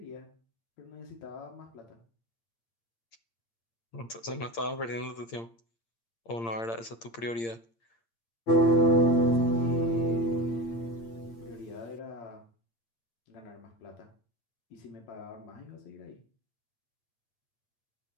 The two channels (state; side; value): late; right; 8.8 ms